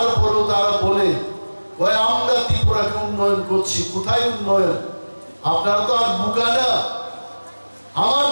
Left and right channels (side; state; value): both; inverted; correlation -1.00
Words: তারা বলে কয় আমরা ত্রিপুরাকে উন্নয়ন করছি। কোথায় উন্নয়ন? আপনারা তো আর বোকা না। আমার